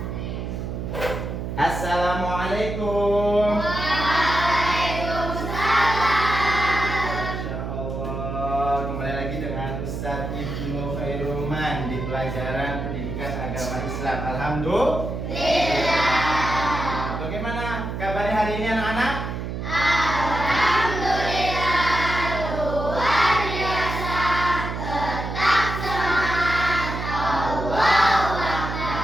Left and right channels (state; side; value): noise; right; hum, 5 dB below the sound